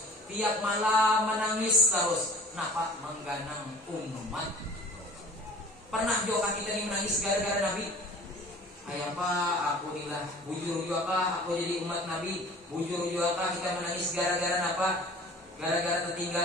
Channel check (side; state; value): both; normal; correlation 0.46